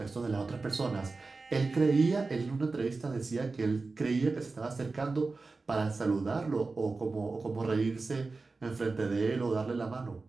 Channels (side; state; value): left; quieter; 3.8 dB